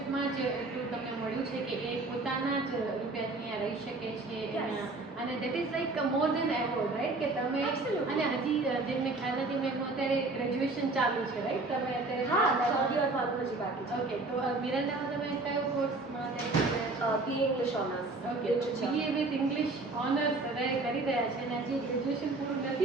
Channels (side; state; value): left; quieter; 3.3 dB